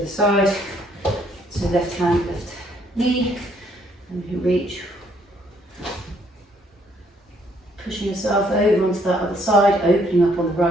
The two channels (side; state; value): both; normal; correlation 0.67